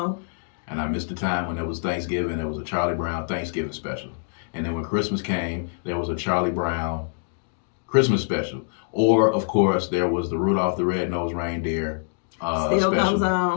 And I missed the time when there was Thanksgiving, there was a Charlie Brown Thanksgiving special. And then when Christmas came, there was a Charlie Brown Christmas special. Or, of course, there was the Rudolph the Red-Nosed Reindeer Still special. comes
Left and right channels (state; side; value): silent; right; digital silence